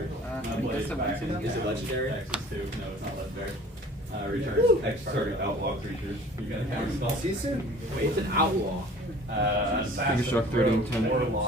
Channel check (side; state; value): both; normal; correlation 0.48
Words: that's a weird Is it legendary? Access to. No, it's not legendary. Returns X target outlaw creatures. You got a counter spell. See you soon. Wait, it's an outlaw. Figure Shock 30 and 10.